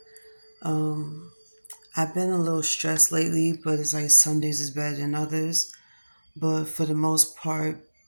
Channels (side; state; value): both; inverted; correlation -1.00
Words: Um, I've been a little stressed lately, but it's like some days is better than others. But for the most part,